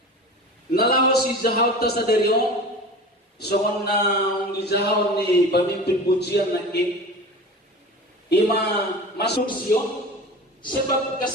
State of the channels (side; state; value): both; normal; correlation 0.35